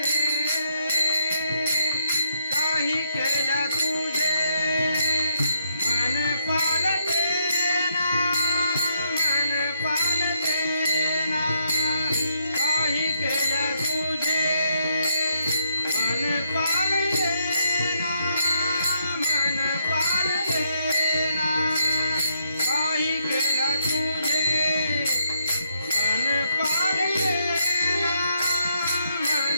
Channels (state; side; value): inverted; both; correlation -0.75